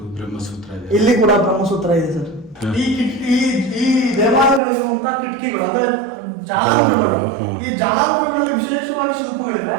ಇಲ್ಲಿ ಕೂಡ ಬ್ರಹ್ಮಸೂತ್ರ ಇದೆ ಸರ್. ಈ ದೇವಾಲಯಗಳಿರುವಂತಹ ಕಿಟಕಿಗಳು ಅಂದ್ರೆ ಜಾಲಂಬರಗಳು, ಈ ಜಾಲಂಬರಗಳಲ್ಲಿ ವಿಶೇಷವಾಗಿ ಶಿಲ್ಪಗಳಿವೆ.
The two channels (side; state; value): left; drops out; at 4.6 s